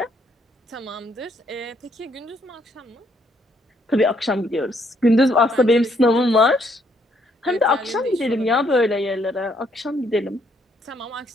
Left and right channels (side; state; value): both; normal; correlation 0.70